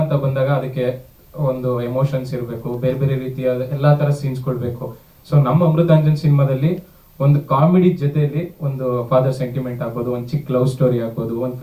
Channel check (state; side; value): identical; both; correlation 1.00